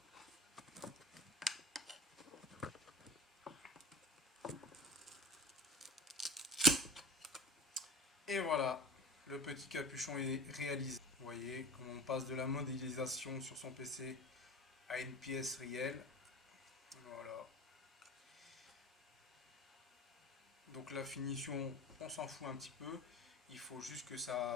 Et voilà, le petit capuchon est réalisé. Vous voyez comment on passe de la modélisation sur son PC à une pièce réelle. Voilà. Donc la finition, on s'en fout un petit peu. Il faut juste que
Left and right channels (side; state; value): both; normal; correlation 0.35